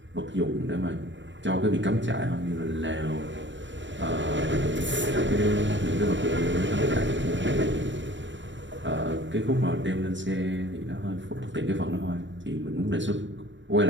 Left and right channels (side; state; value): left; late; 0.54 ms